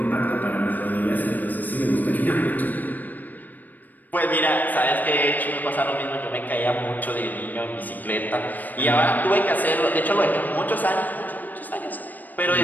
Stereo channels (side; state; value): right; late; 0.086 ms